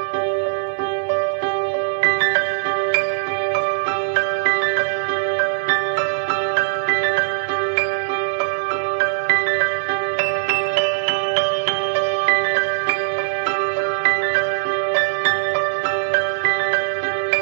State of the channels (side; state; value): left; silent; digital silence